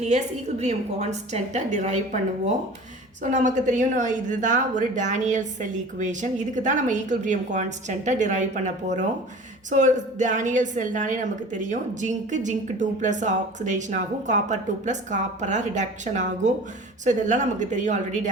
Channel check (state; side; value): normal; both; correlation 0.40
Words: ஈக்குலிபிரியம் கான்ஸ்டன்ட்டை டிரைவ் பண்ணுவோம். ஸோ நமக்கு தெரியும், இதுதான் ஒரு டேனியல் செல் ஈக்குவேஷன். இதுக்கு தான் நம்ம ஈக்குலிபிரியம் கான்ஸ்டன்ட்டை டிரைவ் பண்ண போகிறோம். ஸோ டேனியல் செல்னாலே நமக்கு தெரியும், ஜிங்க் 2+ ஆக்சிடேஷன் ஆகும், காப்பர் 2+ காப்பராக ரிடக்ஷன் ஆகும். ஸோ இதெல்லாம் நமக்கு தெரியும் ஆல்ரெடி